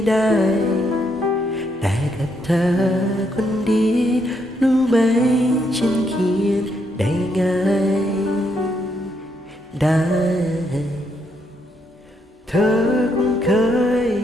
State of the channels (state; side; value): normal; both; correlation 0.76